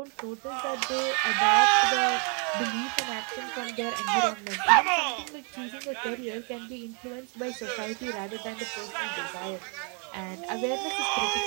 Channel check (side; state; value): left; quieter; 37.6 dB